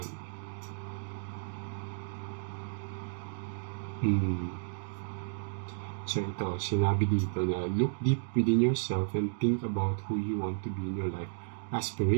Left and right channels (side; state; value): left; silent; digital silence